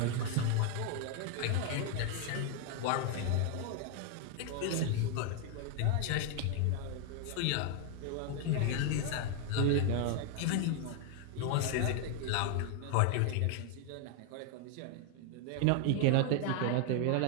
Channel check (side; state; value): both; different; correlation 0.00